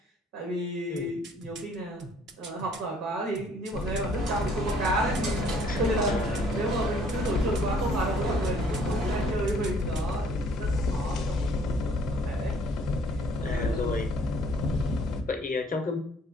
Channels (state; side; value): normal; both; correlation 0.59